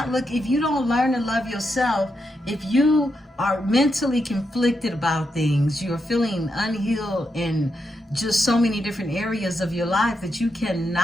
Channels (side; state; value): both; normal; correlation 0.84